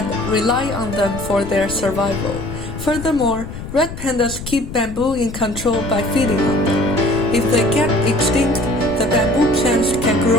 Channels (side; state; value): left; noise; rumble, 10 dB below the sound